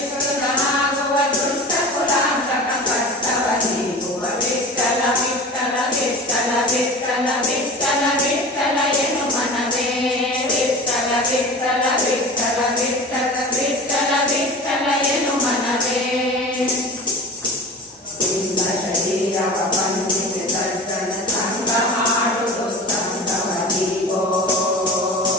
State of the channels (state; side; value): normal; both; correlation 0.34